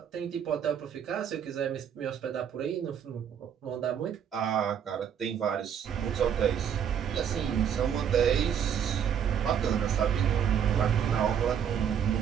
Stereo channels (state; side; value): quieter; left; 8.5 dB